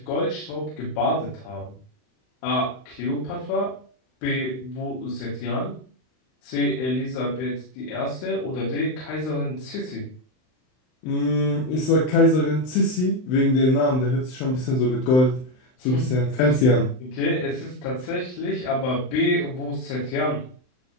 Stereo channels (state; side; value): late; right; 39 ms